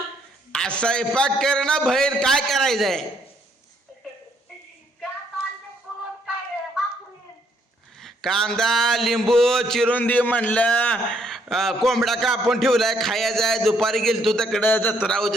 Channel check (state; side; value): normal; both; correlation 0.69